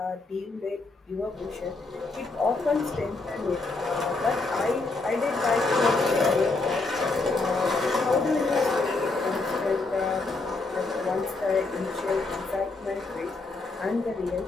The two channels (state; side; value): quieter; right; 3.5 dB